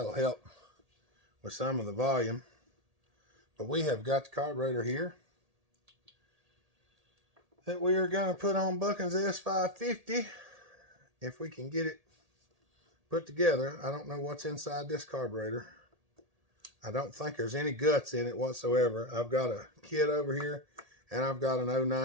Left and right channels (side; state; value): left; late; 1.8 ms